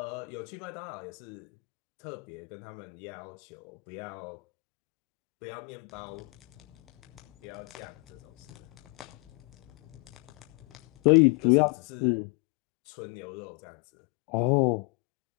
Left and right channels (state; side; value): quieter; right; 32.5 dB